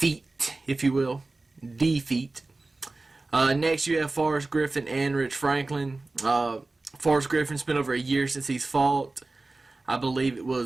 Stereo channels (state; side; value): quieter; left; 3.3 dB